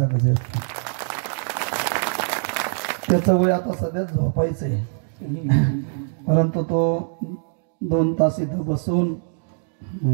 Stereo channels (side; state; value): left; silent; digital silence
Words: गजर. त्याचं वय आता सध्या झोपायचंय, परंतु तो 2 तास इथं बसून